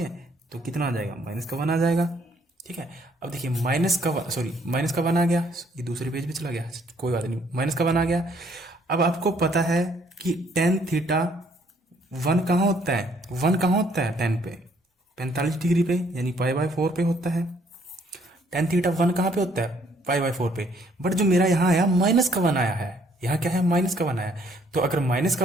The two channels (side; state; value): both; normal; correlation 0.65